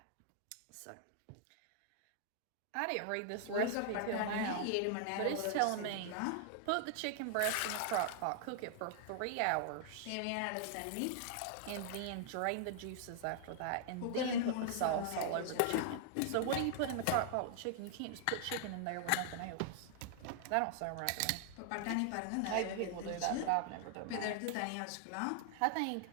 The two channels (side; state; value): both; different; correlation -0.01